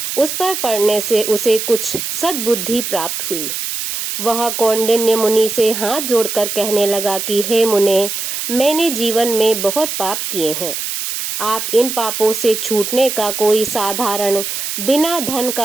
उस पर पड़ने से उसे कुछ सद्बुद्धि प्राप्त हुई। वह कौंडिन्य मुनि से हाथ जोड़कर कहने लगा कि हे मुने, मैंने जीवन में बहुत पाप किए हैं। आप इन पापों से छूटने का कोई साधारण बिना धन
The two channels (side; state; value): right; noise; hiss, 4 dB below the sound